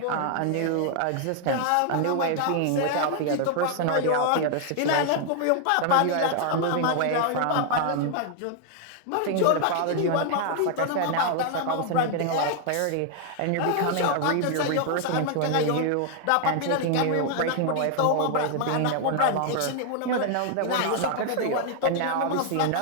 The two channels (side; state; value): both; different; correlation 0.00